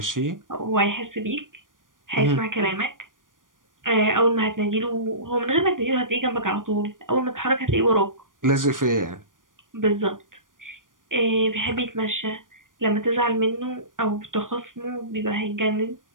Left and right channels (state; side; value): late; left; 0.89 ms